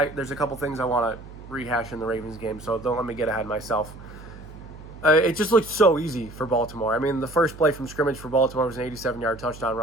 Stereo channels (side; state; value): right; noise; hum, 16 dB below the sound